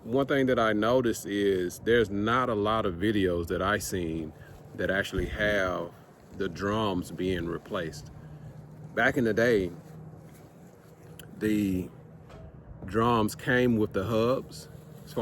one thing that I noticed is there's not a lot of videos that I've seen that actually have the drums being replaced. Back in the day, the drums came with the hubs, as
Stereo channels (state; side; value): identical; both; correlation 1.00